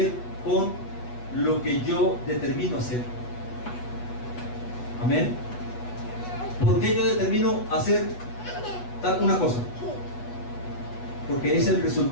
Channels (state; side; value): late; right; 8.2 ms